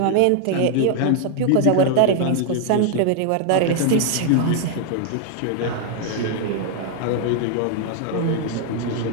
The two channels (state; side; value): different; both; correlation 0.00